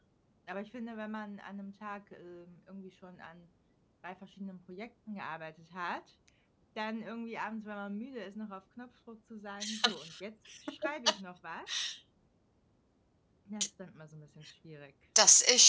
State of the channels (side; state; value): both; identical; correlation 1.00